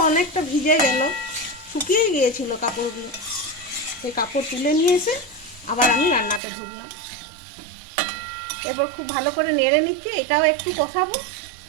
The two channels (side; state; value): left; drops out; at 6.4 s